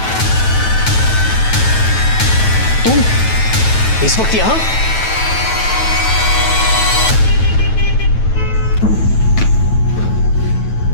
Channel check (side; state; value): right; late; 9.2 ms